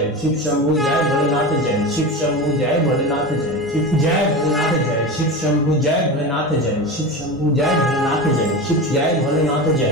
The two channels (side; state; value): both; normal; correlation 0.25